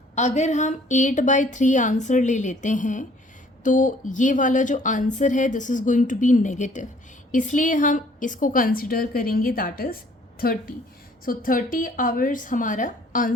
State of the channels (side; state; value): both; normal; correlation 0.58